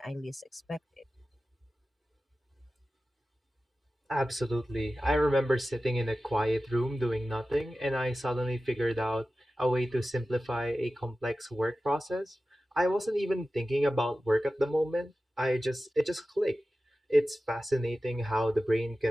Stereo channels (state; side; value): normal; both; correlation 0.95